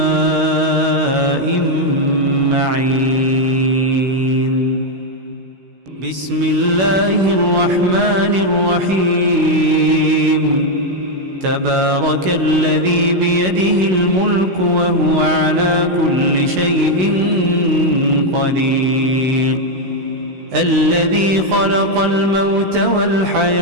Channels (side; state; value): left; late; 16 ms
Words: معين بسم الله الرحمن الرحيم تبارك الذي بيده الملك وهو على كل شيء قدير الذي خلق الموت